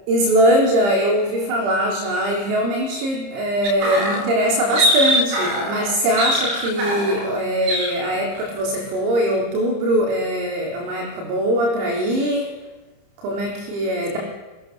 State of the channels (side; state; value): left; late; 30 ms